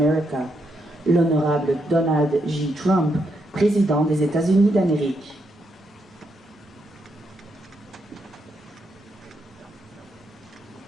L'Honorable Donald J. Trump, Président des États-Unis d'Amérique.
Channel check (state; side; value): normal; both; correlation 0.80